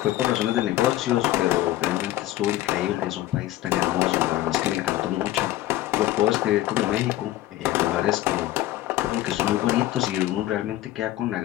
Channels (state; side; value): quieter; right; 15.2 dB